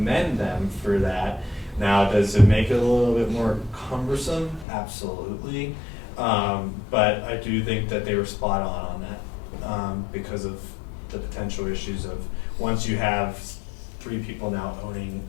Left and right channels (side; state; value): right; drops out; at 4.7 s